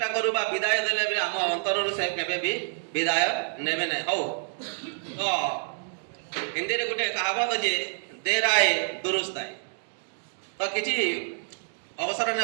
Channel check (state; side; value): silent; left; digital silence